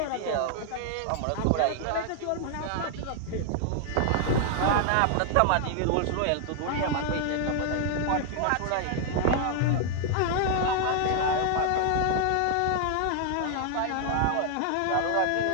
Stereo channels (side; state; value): both; different; correlation 0.00